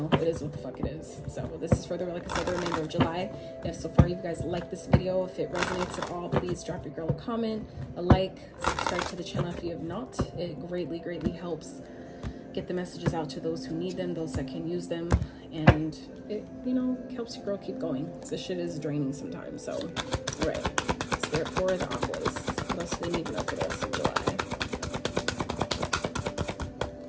it is what the fuck it is. So this is for the, like I said, the remainder of July. If so far you guys like this video, if it resonates at all, please drop your girl a comment, a like, subscribe to the channel if you have not. It greatly, greatly helps get the messages out to those who need them, those that can use them, and it, you know, helps your girl keep going. This shit is draining sometimes. So, all right, Spirit for the Aquas. What else do we need to know for this in July?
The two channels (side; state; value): both; identical; correlation 1.00